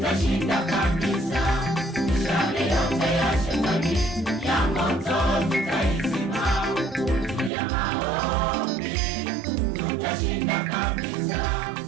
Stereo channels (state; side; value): drops out; left; at 7.5 s